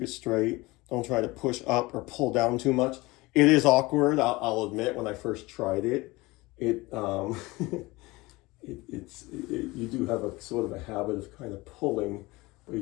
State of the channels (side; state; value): right; quieter; 21.9 dB